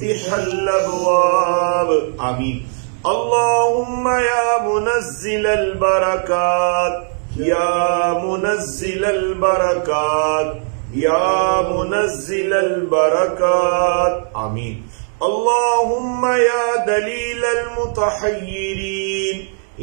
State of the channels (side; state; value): left; silent; digital silence